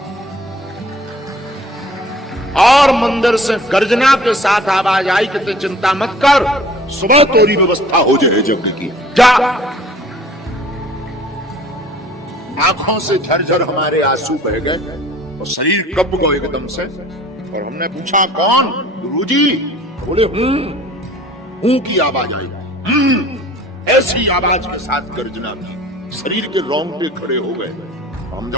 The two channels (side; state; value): both; normal; correlation 0.49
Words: और मंदिर से गर्जना के साथ आवाज आई कि चिंता मत कर, सुबह तोरी व्यवस्था हो जाए यज्ञ की, जा। आंखों से झरझर हमारे आंसू बह गए और शरीर कब गए एकदम से। और हमने पूछा कौन? गुरुजी। बोले हूं की आवाज आई, ऐसी आवाज के साथ गर्जना की, शरीर के रोंगटे खड़े हो गए। हम